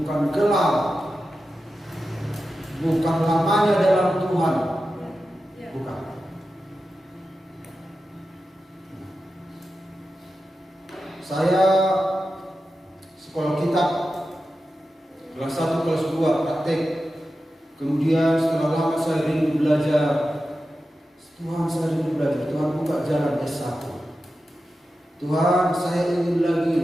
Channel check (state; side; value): normal; both; correlation 0.92